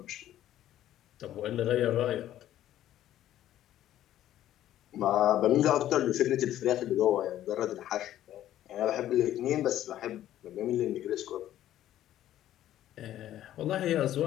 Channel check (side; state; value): right; quieter; 12.6 dB